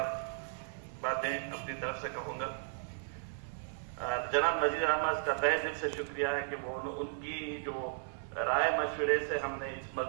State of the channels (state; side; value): silent; left; 54 dB below the other